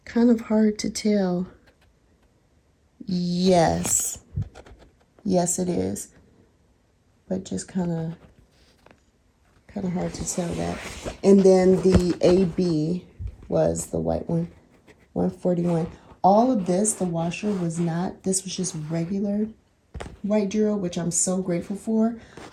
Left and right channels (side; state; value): both; identical; correlation 1.00